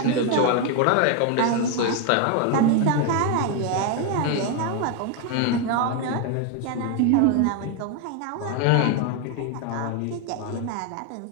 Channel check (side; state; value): both; different; correlation 0.01